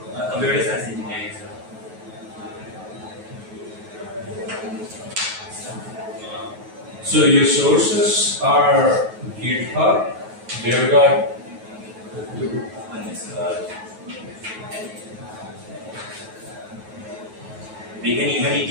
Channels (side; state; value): left; late; 9.3 ms